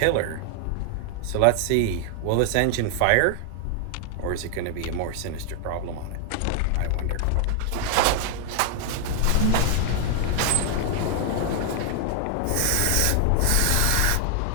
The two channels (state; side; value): different; both; correlation 0.00